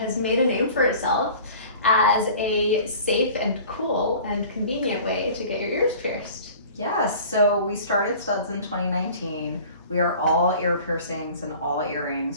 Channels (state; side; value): inverted; both; correlation -0.44